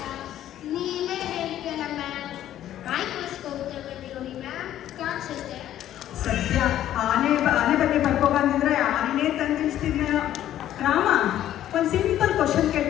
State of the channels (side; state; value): right; quieter; 12.1 dB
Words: ನೀವೇ ಹೇಳ್ತೀರ ಮ್ಯಾಮ್. ಮೈಕ್ರೋಸ್ಕೋಪ್ ತಗೊಂಡು ನೋಡಿ ಮ್ಯಾಮ್, ಕಾಣಿಸುತ್ತೆ. ಸದ್ಯ ಆನೆ ಬಗ್ಗೆ ಬರ್ಕೊ ಬಂದಿದ್ರೆ ಆನೆನೇ ತಂದಿಳಿಸ್ತಿದ್ನೇನೋ. ರಾಮ ಒಂದು ಸಿಂಪಲ್ ಕ್ವಶನ್